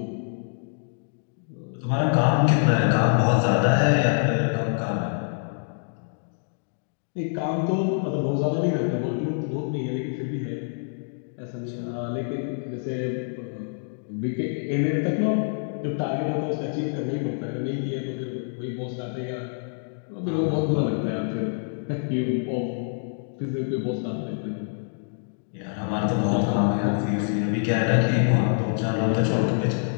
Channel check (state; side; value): silent; right; digital silence